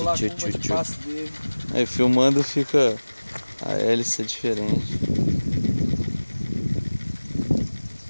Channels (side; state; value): both; inverted; correlation -1.00